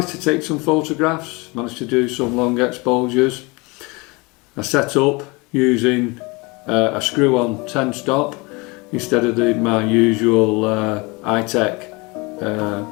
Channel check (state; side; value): quieter; right; 26.4 dB